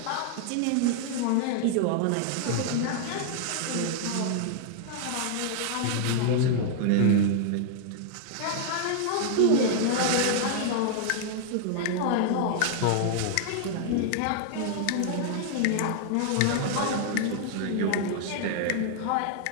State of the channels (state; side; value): different; both; correlation -0.01